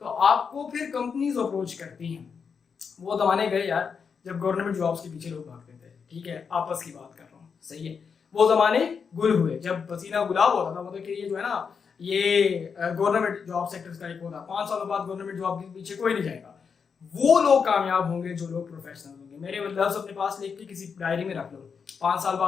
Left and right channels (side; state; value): right; quieter; 6.1 dB